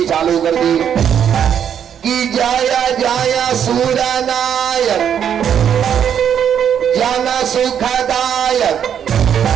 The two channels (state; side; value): quieter; left; 8.7 dB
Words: चालू कर दी कि जाया जाया सूरा नायक जन सुखदायक